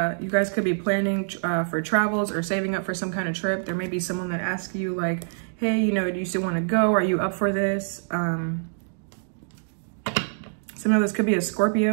guys could be planning for travels or saving up for some kind of trip. There may be someone that asks you like, hey, you know, do you still want to go? Are you up for this? Somehow this could be a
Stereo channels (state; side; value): silent; left; digital silence